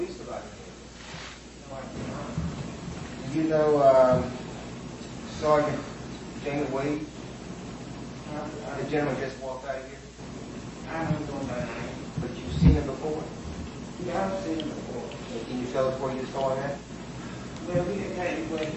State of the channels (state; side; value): identical; both; correlation 1.00